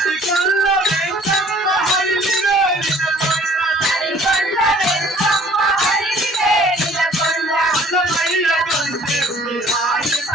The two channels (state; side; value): normal; both; correlation 0.54